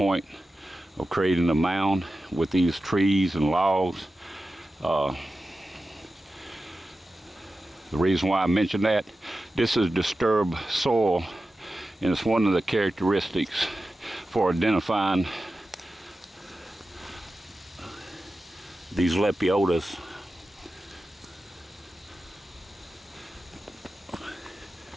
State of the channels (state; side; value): normal; both; correlation 0.93